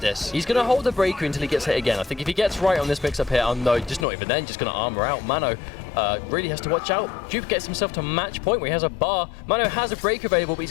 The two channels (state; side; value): drops out; right; at 4.0 s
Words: He's going to hold the breaker until he gets hit again. I think if he gets right on this mix-up here, no, just not even then, just going to armor out. Mano really has to watch out. Jupe gets himself to match point where he has a bar. Mano has a breaker available, but